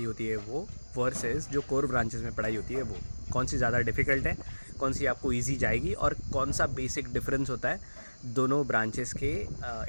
होती है वो वर्सेस जो कोर ब्रांचेस में पढ़ाई होती है वो कौन सी ज़्यादा डिफ़िकल्ट है, कौन सी आपको ईजी जाएगी और कौन सा बेसिक डिफरेंस होता है दोनों ब्रांचेस के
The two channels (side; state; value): both; inverted; correlation -1.00